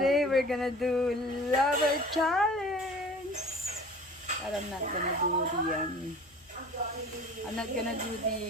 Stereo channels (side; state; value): both; normal; correlation 0.44